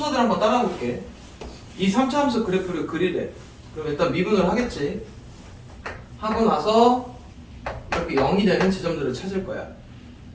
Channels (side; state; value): both; identical; correlation 1.00